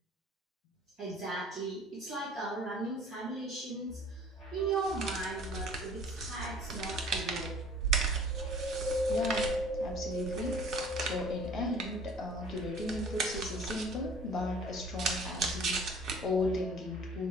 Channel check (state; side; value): normal; both; correlation 0.50